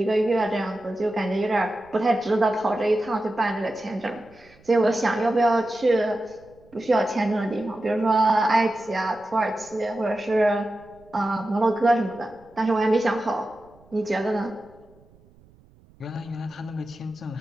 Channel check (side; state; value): right; noise; rumble, 28 dB below the sound